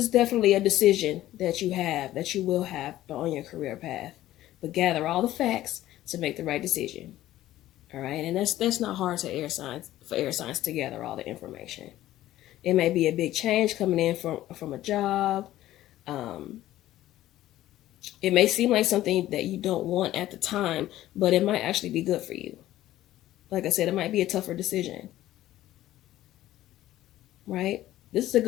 definitely a decision that you will have on your career path. But gather all the facts to make the right decision. All right? And that's not hard for air signs to gather all the information. It may be a big change coming in from a job. It may seem like something that you don't want at the time, but it might actually be good for you. Like I said, it might be a tougher decision. Right? This is a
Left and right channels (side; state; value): right; quieter; 14.4 dB